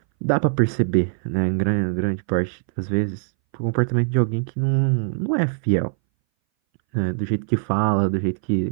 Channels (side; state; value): left; silent; 61 dB below the other